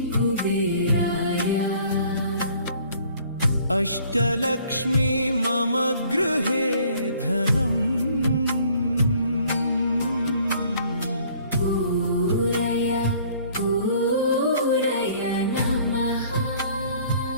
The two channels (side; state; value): both; inverted; correlation -0.57